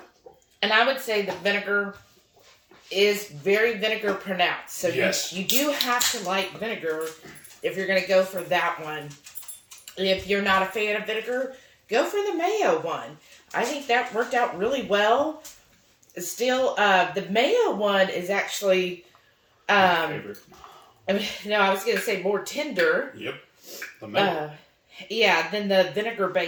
And I would say the vinegar is very vinegar pronounced. So yes. you do have to like vinegar if you're going to go for that one. If you're not a fan of vinegar, go for the mayo one. I think that worked out really well. Still, the mayo one is actually... my favorite. I was going to say more tender. Yep. The mayo. Yeah, than the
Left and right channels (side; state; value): both; identical; correlation 1.00